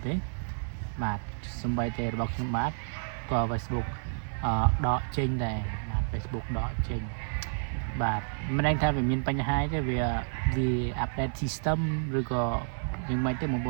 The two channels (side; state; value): left; silent; 58 dB below the other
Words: ទេបាទសម្បីតែរបស់ខ្ញុំបាទក៏ Facebook ដកចេញដែរបាទ Facebook ដកចេញបាទមិនដឹងថាវាមានបញ្ហាទេវា update system ឬក៏យើងមិនទេបងប្អ